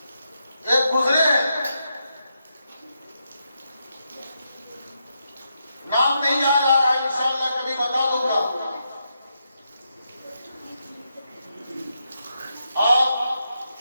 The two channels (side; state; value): both; inverted; correlation -0.83